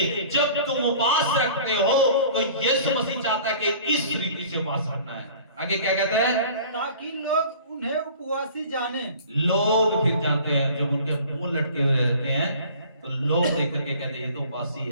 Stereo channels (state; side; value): inverted; both; correlation -0.47